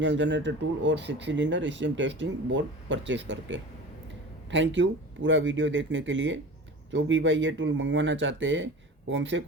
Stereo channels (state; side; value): normal; both; correlation 0.36